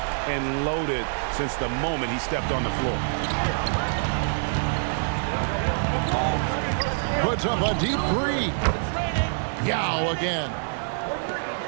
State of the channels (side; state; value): left; silent; 57 dB below the other